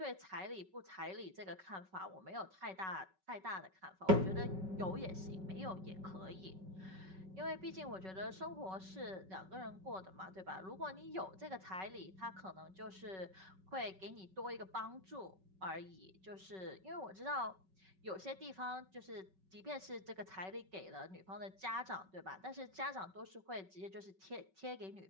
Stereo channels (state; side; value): late; left; 5.3 ms